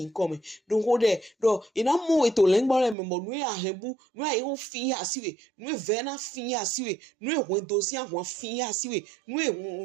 come don ko de do ina mo we to le ngbo le me mo nu ahembu nu ai ho fin asiwe nu ve na fin asiwe nu ho dosi ahun fin asiwe nu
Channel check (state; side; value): drops out; left; at 3.0 s